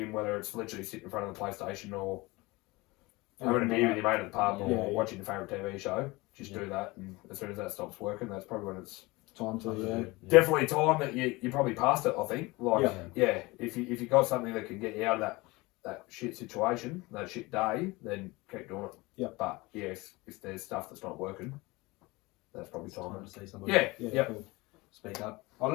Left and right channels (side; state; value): right; quieter; 22.8 dB